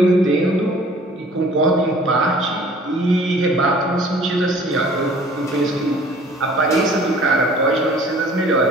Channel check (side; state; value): both; normal; correlation 0.52